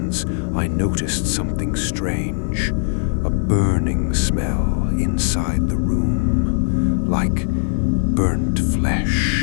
I noticed something strange. A burning smell inside the room, like burnt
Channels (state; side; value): silent; right; digital silence